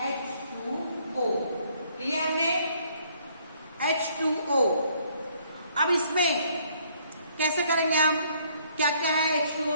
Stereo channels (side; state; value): both; inverted; correlation -0.65